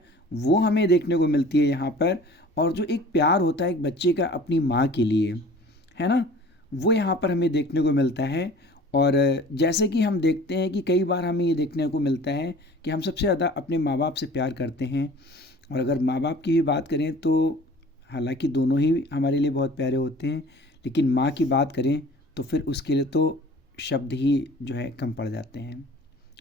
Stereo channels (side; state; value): both; normal; correlation 0.45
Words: वो हमें देखने को मिलती है यहाँ पर। और जो एक प्यार होता है एक बच्चे का अपनी माँ के लिए, है ना, वो यहाँ पर हमें देखने को मिलता है। और जैसे कि हम देखते हैं कि कई बार हमें ये देखने को मिलता है कि हम सबसे ज़्यादा अपने माँ बाप से प्यार करते हैं। और अगर माँ बाप की भी बात करें तो हालांकि दोनों ही हमारे लिए बहुत प्यारे होते हैं, लेकिन माँ की बात करें तो फिर उसके लिए तो शब्द ही जो है कम पड़ जाते हैं,